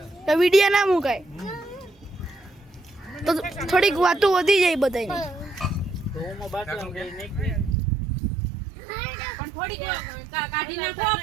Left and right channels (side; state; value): left; drops out; at 7.8 s